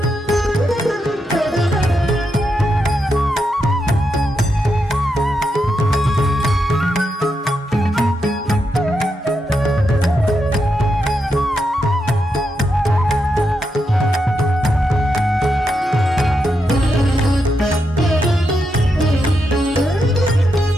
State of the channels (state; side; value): normal; both; correlation 0.84